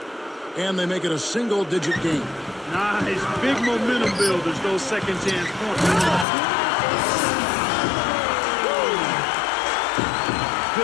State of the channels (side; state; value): right; drops out; at 6.2 s